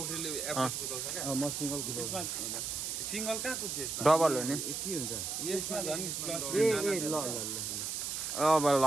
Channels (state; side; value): noise; right; hiss, 3 dB below the sound